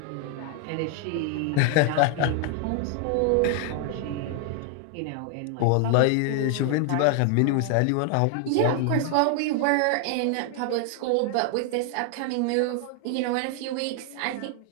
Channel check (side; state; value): both; different; correlation 0.00